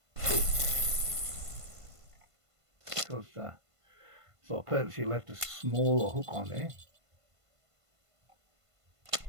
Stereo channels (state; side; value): late; left; 1.5 ms